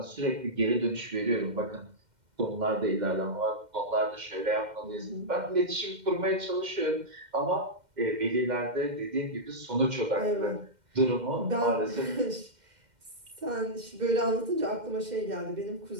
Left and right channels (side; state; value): left; late; 2.1 ms